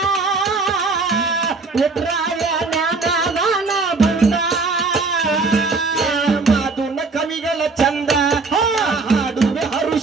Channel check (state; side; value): quieter; left; 4.0 dB